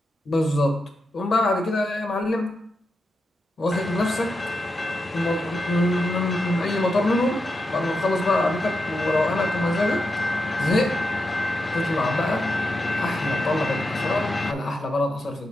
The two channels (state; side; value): normal; both; correlation 0.87